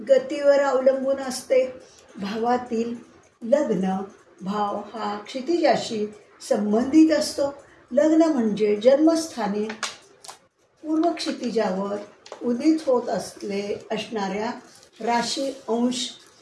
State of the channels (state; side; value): identical; both; correlation 1.00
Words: अवलंबून असते. भावातील लग्न भाव हा क्षितिजाशी संबंधित असतो. लग्न म्हणजे जन्मस्थानी पूर्व क्षितिजावर उदित होत असणाऱ्या राशी, अंश,